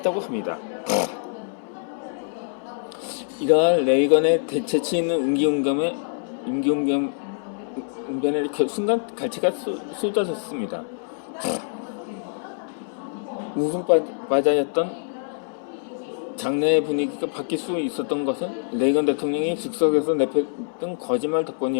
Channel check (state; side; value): silent; right; 62 dB below the other